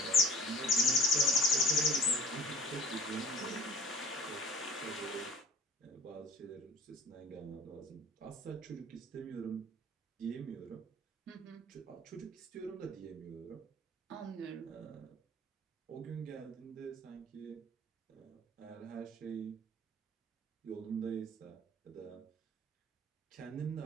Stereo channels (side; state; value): both; normal; correlation 0.47